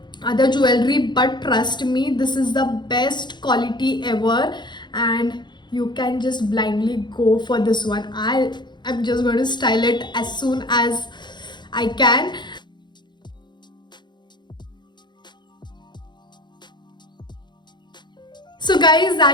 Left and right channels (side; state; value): right; late; 0.22 ms